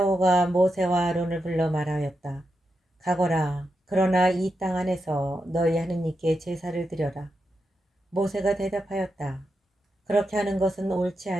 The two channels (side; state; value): both; normal; correlation 0.87